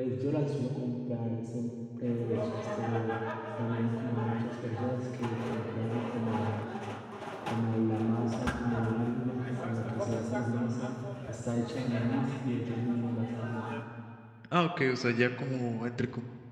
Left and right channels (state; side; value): identical; both; correlation 1.00